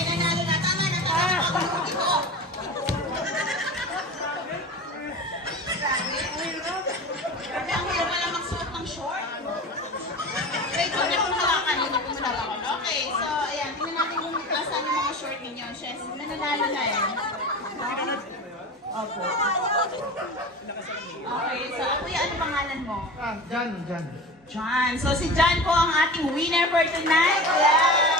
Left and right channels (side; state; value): both; normal; correlation 0.32